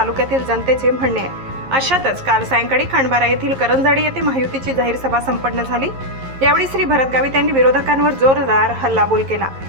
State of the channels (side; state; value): left; late; 11 ms